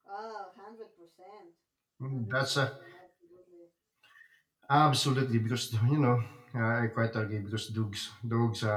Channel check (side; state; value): both; identical; correlation 1.00